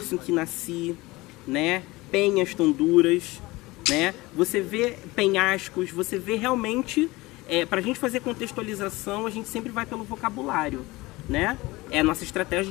em que nasci, né? Penhas tão duras, né? Você vê penhascos, você vê realmente, para a gente fazer contextualização, a gente sempre vai pelo vocabulário, né? É a nossa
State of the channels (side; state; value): right; quieter; 21.1 dB